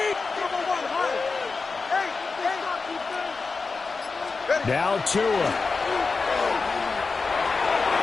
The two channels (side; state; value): right; quieter; 4.3 dB